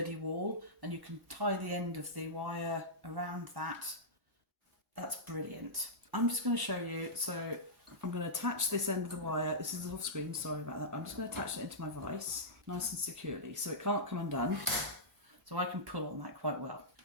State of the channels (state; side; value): normal; both; correlation -0.14